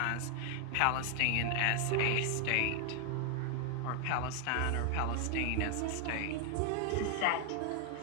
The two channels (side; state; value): both; different; correlation 0.00